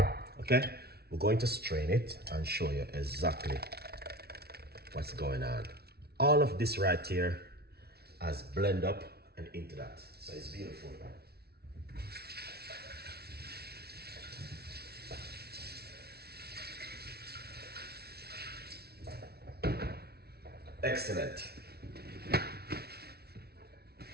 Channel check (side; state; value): left; late; 0.46 ms